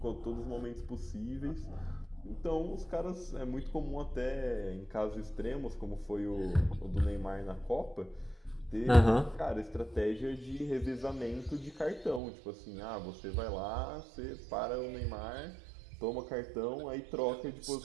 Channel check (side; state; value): left; drops out; at 12.2 s